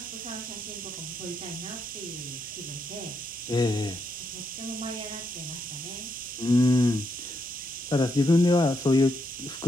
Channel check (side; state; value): both; normal; correlation 0.79